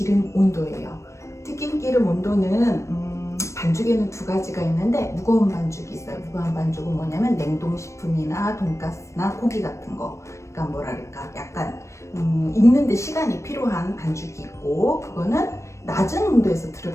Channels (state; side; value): late; right; 0.14 ms